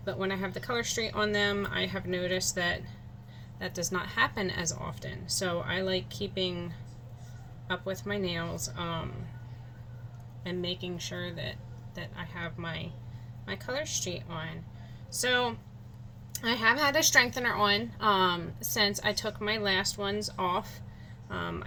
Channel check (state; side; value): identical; both; correlation 1.00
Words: But when I have the color street on them, I have noticed that that does not happen as often. So I like keeping up with my nails and making sure that I have my color street on. So I have had a strengthener on since I took my last ones off.